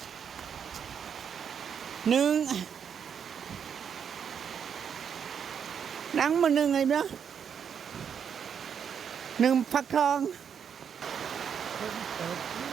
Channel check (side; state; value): left; quieter; 7.6 dB